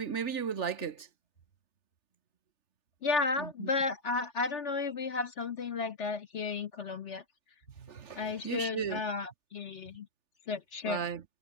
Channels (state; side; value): late; right; 3.4 ms